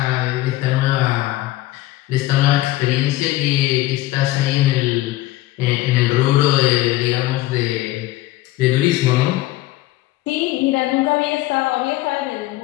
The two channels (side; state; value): right; quieter; 16.6 dB